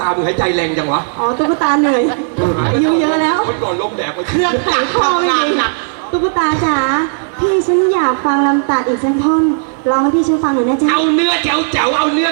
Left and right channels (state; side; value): silent; left; digital silence